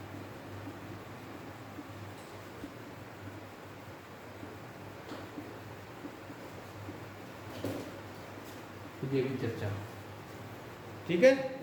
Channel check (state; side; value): identical; both; correlation 1.00